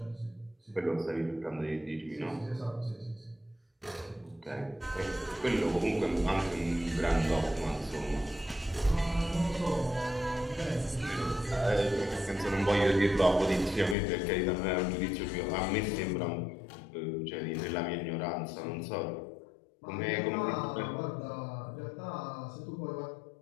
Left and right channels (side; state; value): right; drops out; at 14.0 s